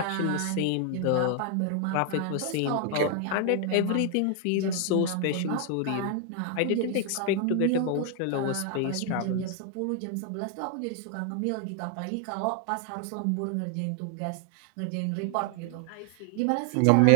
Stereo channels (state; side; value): different; both; correlation 0.00